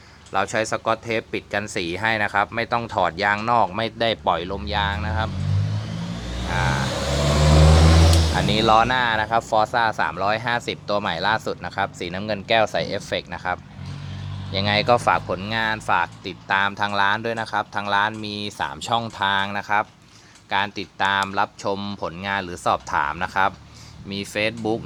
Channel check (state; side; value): identical; both; correlation 1.00